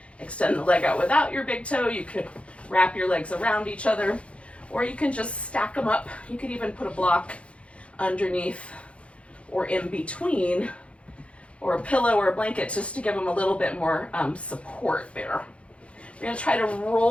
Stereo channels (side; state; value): right; late; 0.061 ms